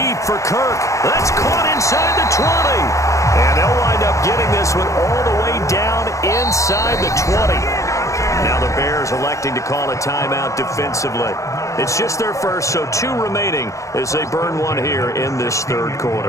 for Kirk. That's caught inside the 20. And they'll wind up getting this one all the way down inside the 20. Now the Bears electing to call a timeout defensively. It's just their first, so 2 remaining as they burn one here in this third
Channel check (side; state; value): right; late; 0.15 ms